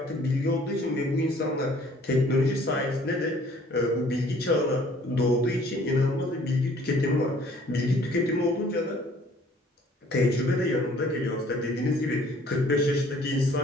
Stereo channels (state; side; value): normal; both; correlation 0.56